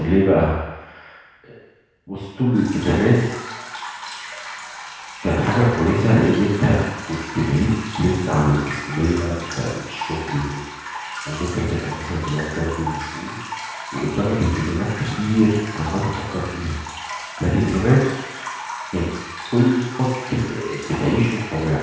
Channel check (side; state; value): both; identical; correlation 1.00